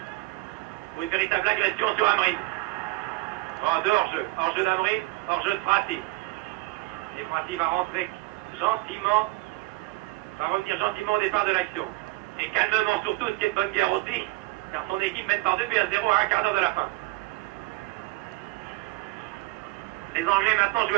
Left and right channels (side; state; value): left; quieter; 21.6 dB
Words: Pour une véritable agression sur Amrin. Bon, de hors-jeu. Hors-jeu d'Amrin, hors-jeu de Prati. Et Prati va rentrer gentiment, va revenir gentiment au départ de l'action. Et calmement surtout, ce qui est de bonne guerre aussi, car son équipe mène par 2-0 à un quart d'heure de la fin. Les Anglais maintenant jouent